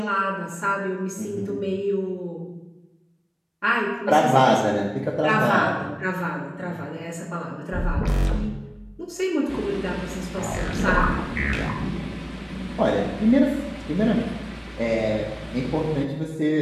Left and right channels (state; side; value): identical; both; correlation 1.00